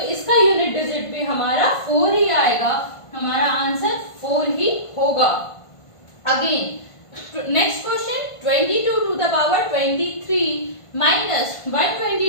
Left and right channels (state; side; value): late; right; 1.5 ms